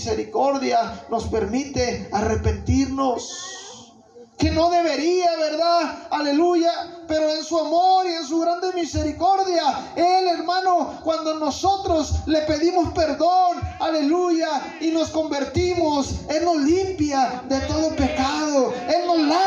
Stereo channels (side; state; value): both; identical; correlation 1.00